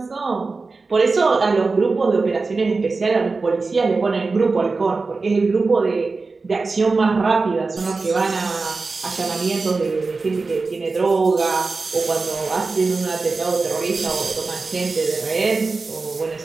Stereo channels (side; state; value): left; quieter; 4.0 dB